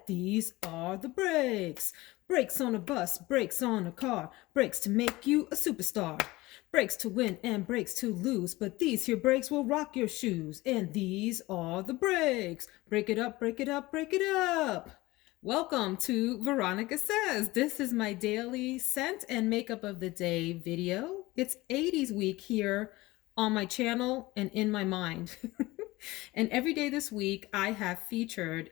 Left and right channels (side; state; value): right; quieter; 20.0 dB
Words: these are the breaks. Brakes on a bus, brakes on a car, brakes to make you a superstar. Brakes to win and brakes to lose, but these here brakes will rock your shoes. And these are the breaks. Break it up, break it up, break it up. Welcome to Veronica Says. This is my daily scent and makeup of the day video. It's 80s week here on my channel and in my mind. And every day this week, I have featured